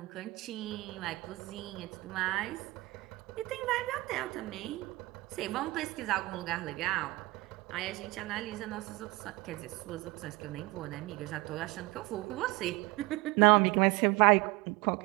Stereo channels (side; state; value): left; quieter; 21.9 dB